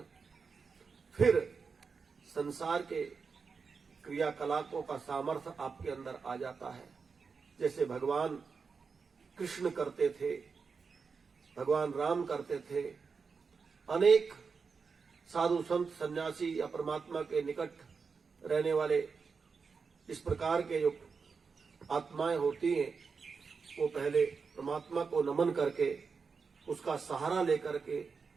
फिर संसार के क्रियाकलापों का सामर्थ्य आपके अंदर आ जाता है। जैसे भगवान कृष्ण करते थे, भगवान राम करते थे, अनेक साधु संत सन्यासी या परमात्मा के निकट रहने वाले इस प्रकार के जो आत्माएं होती हैं, वो पहले परमात्मा को नमन करके, उसका सहारा लेकर के,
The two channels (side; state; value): left; quieter; 5.2 dB